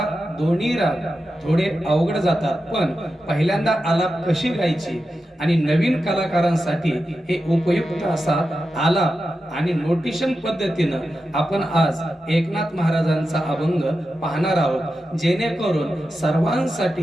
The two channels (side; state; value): both; normal; correlation 0.90